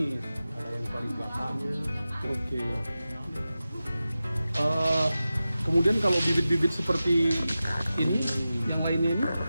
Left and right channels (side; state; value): both; inverted; correlation -0.94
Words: ada yang paling belakangnya. Oke. Kemudian kalau bibit-bibit seperti ini, yang lainnya ini,